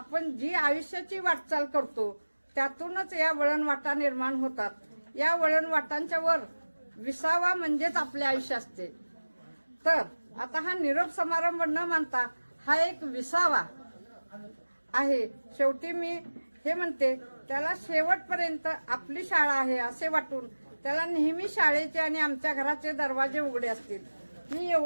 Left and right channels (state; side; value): inverted; both; correlation -1.00